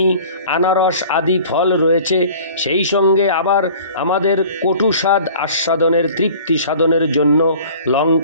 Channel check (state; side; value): inverted; both; correlation -0.46